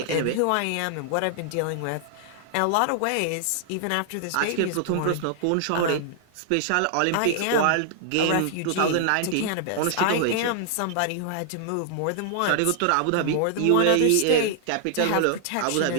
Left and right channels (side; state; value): both; different; correlation 0.00